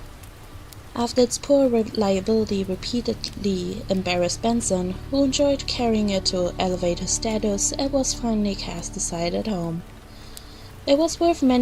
After its poor reliability repeatedly embarrassed Benson, who enjoyed carrying it to elevate his status, it was finally cast aside at home. It was worth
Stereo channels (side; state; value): both; identical; correlation 1.00